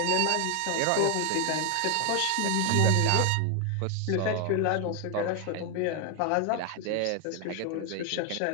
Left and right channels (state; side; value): different; both; correlation 0.01